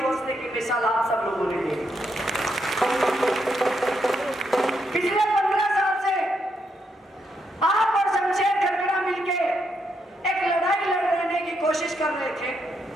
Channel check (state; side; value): normal; both; correlation 0.79